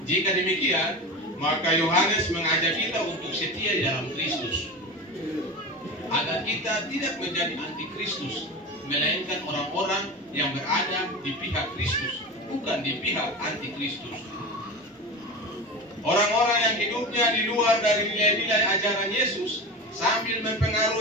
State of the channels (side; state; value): both; normal; correlation 0.27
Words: Jika demikian, maka Yohanes mengajak kita untuk setia di dalam Kristus, agar kita tidak menjadi antikristus, melainkan orang-orang yang berada di pihak Kristus, bukan di pihak antikristus. Orang-orang yang hidupnya di luar dari nilai-nilai ajaran Yesus, sambil